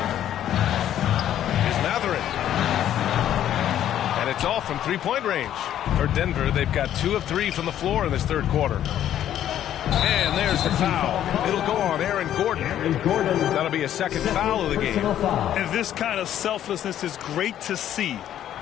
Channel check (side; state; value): right; quieter; 11.2 dB